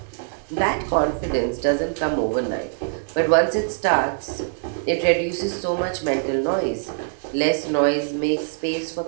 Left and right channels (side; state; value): left; silent; digital silence